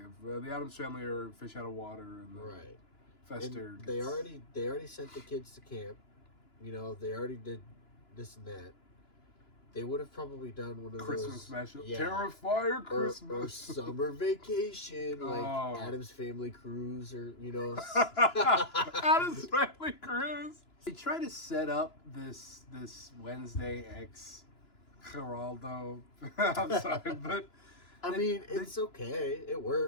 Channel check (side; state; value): right; late; 2.9 ms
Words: of the Addams Family are fish out of water, and the Right. Fester. And they already sent the kids to camp. You know, they already did this and that. They would have probably done one of Christmas those special. yeah. Terrifier or Christmas. summer vacation, like Oh. Addams Family Cruise, or you know. Addams Family Cruise. They try to set up this Wednesday X Geraldo. I'm sorry, but I mean, it's okay. It